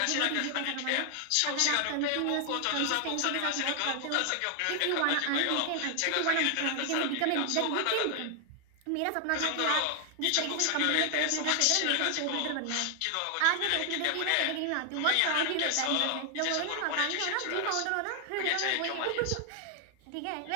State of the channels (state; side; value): different; both; correlation 0.00